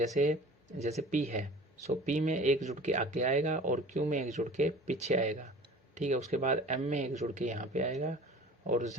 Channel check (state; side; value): normal; both; correlation 0.43